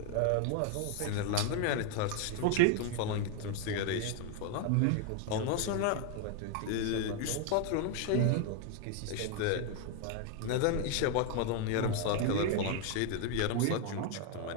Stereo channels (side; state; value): both; different; correlation 0.01